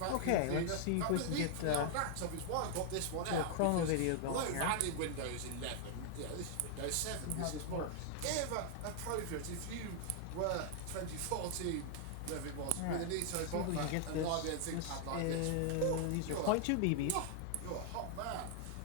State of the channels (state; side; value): different; both; correlation 0.00